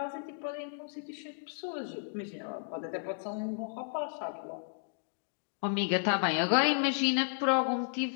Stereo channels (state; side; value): silent; right; digital silence